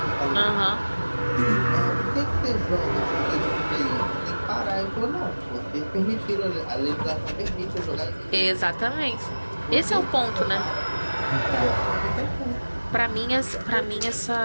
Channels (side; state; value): both; inverted; correlation -1.00